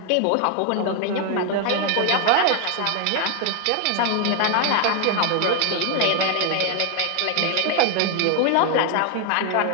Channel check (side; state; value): both; different; correlation 0.00